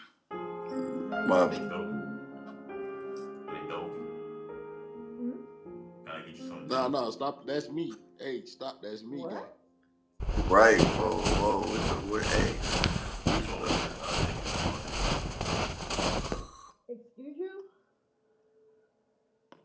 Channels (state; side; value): identical; both; correlation 1.00